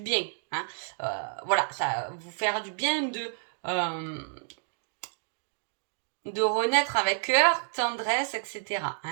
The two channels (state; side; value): silent; left; digital silence